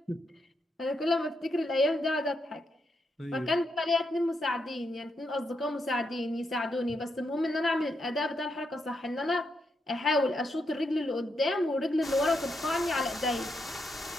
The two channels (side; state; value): both; normal; correlation 0.81